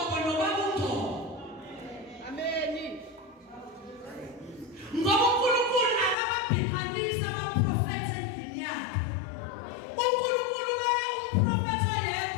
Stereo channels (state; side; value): drops out; right; at 6.2 s